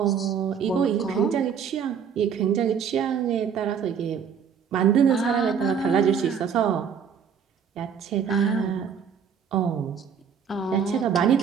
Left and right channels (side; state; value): left; quieter; 7.2 dB